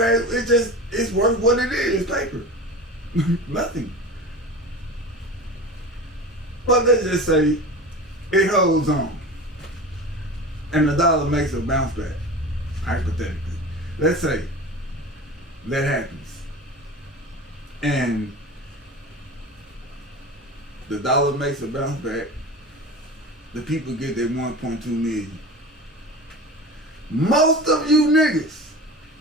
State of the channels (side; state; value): both; normal; correlation 0.32